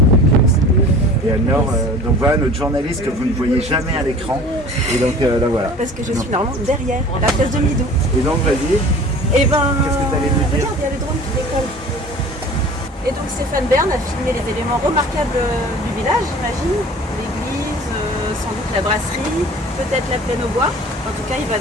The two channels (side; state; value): both; normal; correlation 0.44